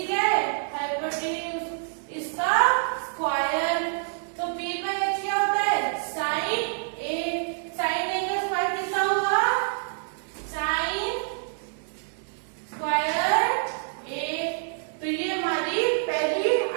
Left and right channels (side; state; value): left; silent; digital silence